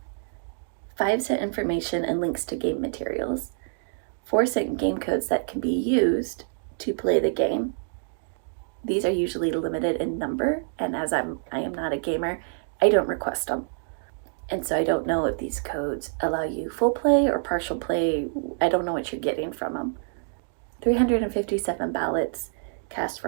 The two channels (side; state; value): left; silent; digital silence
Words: 5 sent information and links to game materials. 4 sent game codes that can be used to play the game. These are usually limited in number, and as I am not a gamer, I don't request them. And so I don't know if these codes allow you full play or partial play. I don't know what you're getting from them. 357 ballots cast